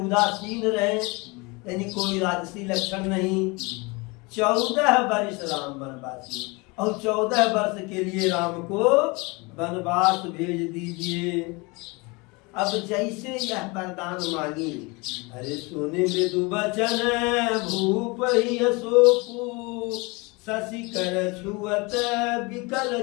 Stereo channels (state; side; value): quieter; right; 26.7 dB